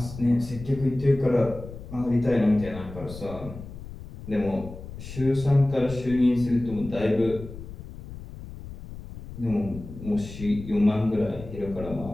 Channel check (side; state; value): left; noise; rumble, 13 dB below the sound